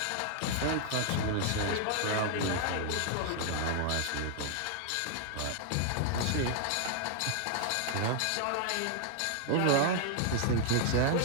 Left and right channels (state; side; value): different; both; correlation 0.00